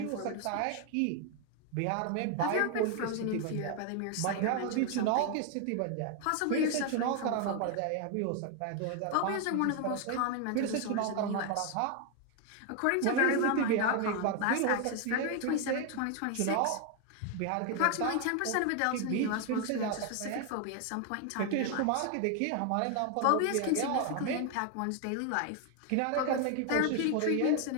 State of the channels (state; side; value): different; both; correlation 0.01